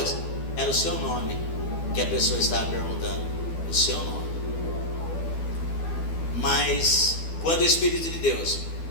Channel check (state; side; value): late; right; 12 ms